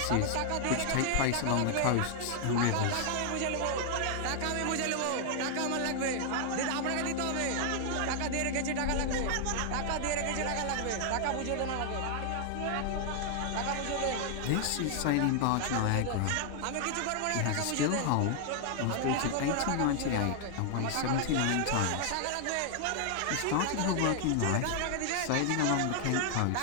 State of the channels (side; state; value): both; different; correlation 0.00